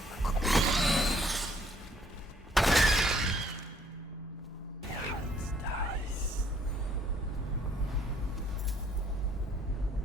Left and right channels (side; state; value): both; normal; correlation 0.64